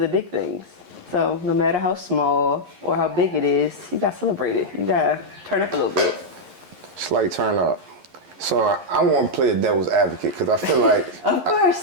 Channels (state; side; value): late; left; 11 ms